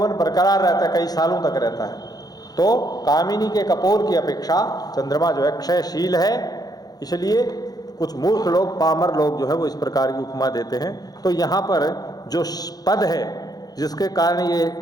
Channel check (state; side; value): late; right; 0.19 ms